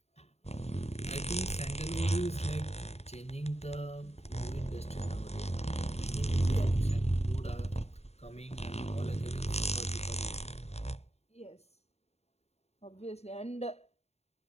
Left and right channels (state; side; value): late; right; 0.31 ms